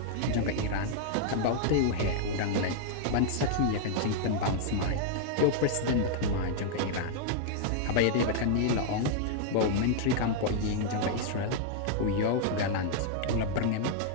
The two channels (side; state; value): both; different; correlation -0.01